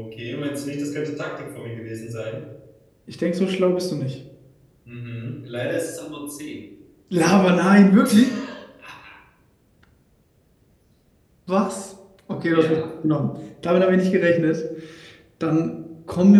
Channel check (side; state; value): both; identical; correlation 1.00